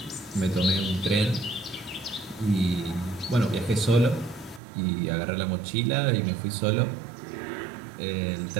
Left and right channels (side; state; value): left; drops out; at 4.6 s